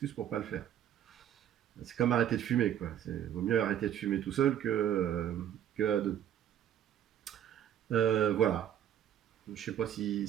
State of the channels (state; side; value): quieter; left; 10.4 dB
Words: pour pas le faire. C'est comme arrêter de fumer, quoi. Vaut mieux arrêter de fumer tout seul que à deux. Voilà. Je sais pas si